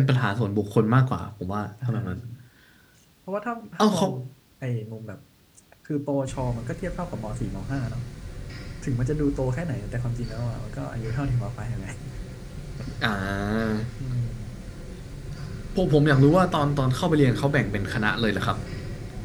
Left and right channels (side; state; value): both; identical; correlation 1.00